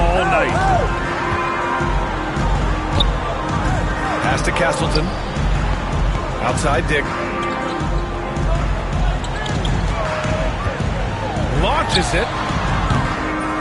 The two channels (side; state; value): both; identical; correlation 1.00